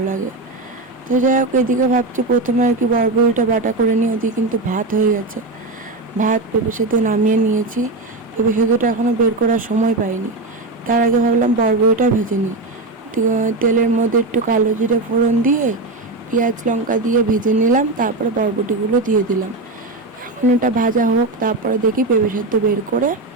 লাগে। তো যাই হোক, এদিকে ভাবছি প্রথমে আর কি বরবটিটা বাটা করে নিই। ওদিকে কিন্তু ভাত হয়ে গেছে, ভাত পেঁপে সেদ্ধ নামিয়ে নিয়েছি। পেঁপে সেদ্ধটা এখনও বের করার সময় পাইনি, তার আগে ভাবলাম বরবটিটা ভেজে নিই। তেলের মধ্যে একটু কালো জিরে ফোড়ন দিয়ে পেঁয়াজ লঙ্কা দিয়ে ভেজে নিলাম, তারপরে বরবটিগুলো দিয়ে দিলাম। এখন এটা ভাজা হোক, তারপরে দেখি পেঁপে সেদ্ধ বের করে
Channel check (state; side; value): quieter; left; 3.1 dB